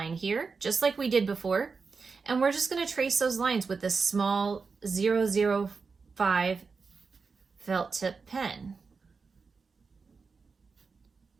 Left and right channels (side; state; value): left; quieter; 4.8 dB